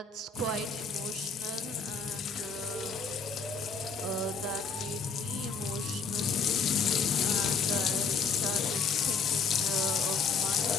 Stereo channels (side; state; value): right; quieter; 5.3 dB